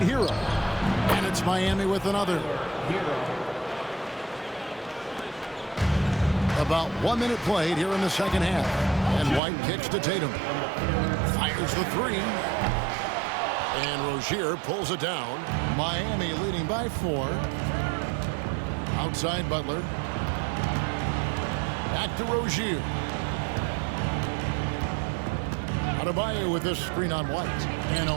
Hero. And it's Miami with another. About 1 minute played here in the second half. And White kicks to Tatum. Fires the 3. And Rozier pulls it down. Miami leading by 4. Outside Butler. Back to Rozier. Adebayo with this screen on White. And a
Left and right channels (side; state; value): left; drops out; at 9.4 s